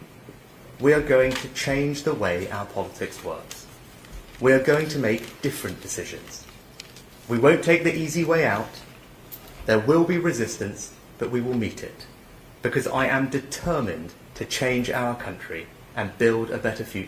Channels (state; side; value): identical; both; correlation 1.00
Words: We are going to change the way our politics works. We are going to make different decisions. We won't take the easy way out. There will be resistance, but we will meet it. Because I am determined to change our country and build a better